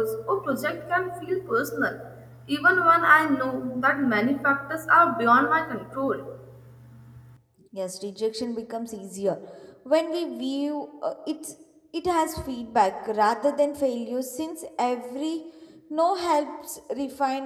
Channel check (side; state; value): both; identical; correlation 1.00